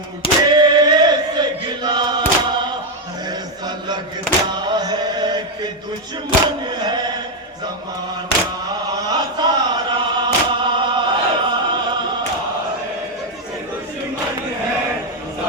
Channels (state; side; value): normal; both; correlation 0.04